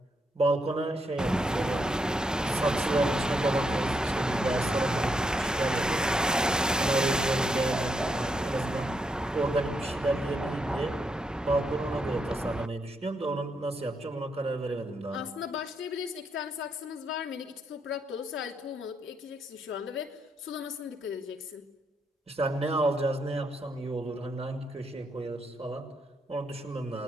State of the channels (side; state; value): both; normal; correlation 0.79